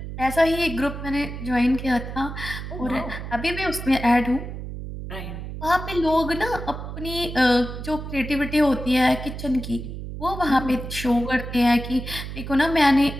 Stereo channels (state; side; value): noise; right; hum, 8 dB below the sound